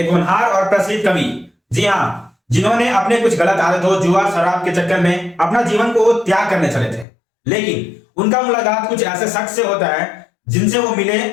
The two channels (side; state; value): right; drops out; at 7.1 s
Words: होनहार और प्रसिद्ध कवि, जी हाँ, जिन्होंने अपने कुछ गलत आदतों, जुआ शराब के चक्कर में अपना जीवन को त्याग करने चले थे, लेकिन उनका मुलाकात कुछ ऐसे शख्स से होता है जिनसे वो मिले